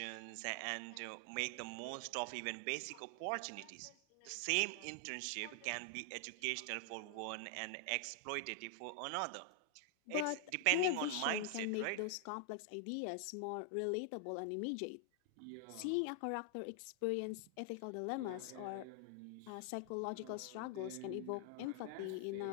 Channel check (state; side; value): different; both; correlation 0.00